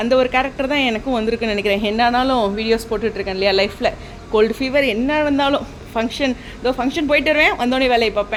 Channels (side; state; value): both; identical; correlation 1.00